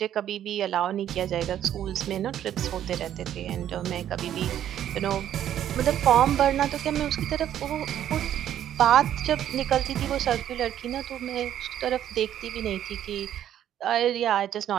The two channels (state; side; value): quieter; left; 10.9 dB